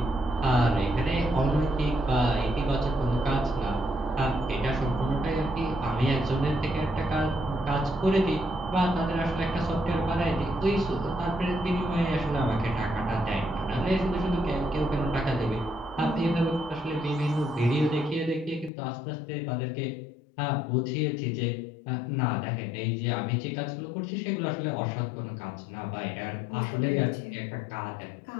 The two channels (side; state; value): right; drops out; at 18.7 s